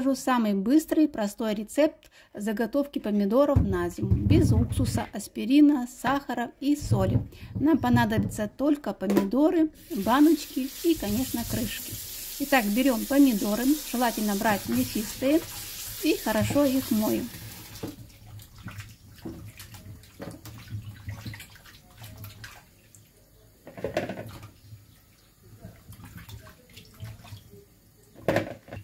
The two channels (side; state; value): both; identical; correlation 1.00